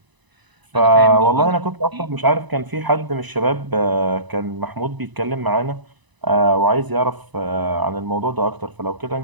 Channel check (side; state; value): left; late; 1.0 ms